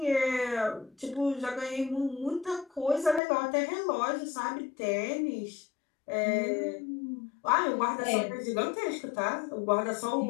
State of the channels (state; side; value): drops out; right; at 3.2 s